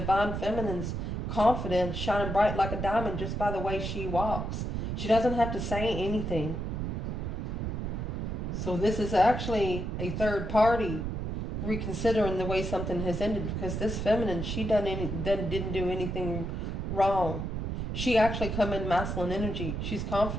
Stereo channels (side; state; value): right; noise; rumble, 3 dB below the sound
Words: feminine's confidence shining bright like a diamond just by the way she walks. She doesn't have to say anything. So this is actually a third party reconsidering the way something has ended, because this feminine, she didn't do anything wrong. She actually come in masculine energy. She's